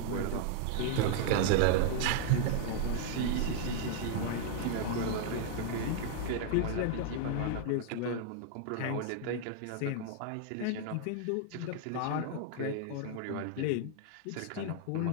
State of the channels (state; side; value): different; both; correlation 0.00